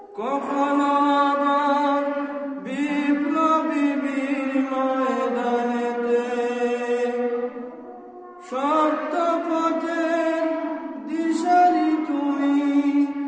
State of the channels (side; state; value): both; identical; correlation 1.00